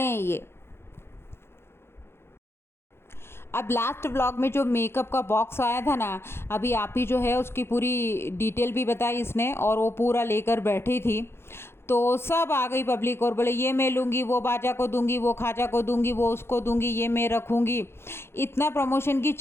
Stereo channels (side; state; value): right; late; 0.12 ms